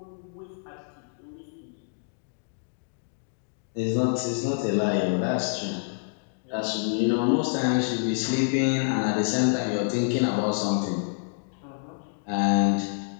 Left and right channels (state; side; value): silent; right; digital silence